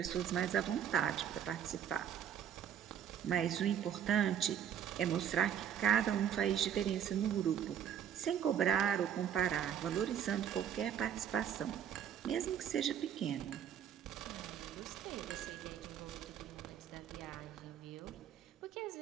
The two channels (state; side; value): quieter; left; 9.2 dB